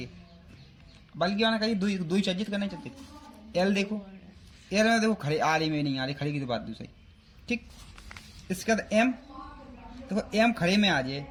बल्कि आना कहीं दो ही चर्जित करना चाहते। एल देखो, एल में देखो खड़े आ रही में नहीं आ रही, खड़े की तो बात दूसरी, ठीक। इसके बाद एम देखो, एम खड़े में आ जाए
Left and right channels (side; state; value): both; identical; correlation 1.00